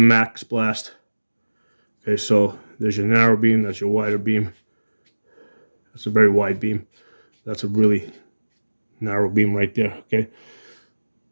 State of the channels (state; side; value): inverted; both; correlation -1.00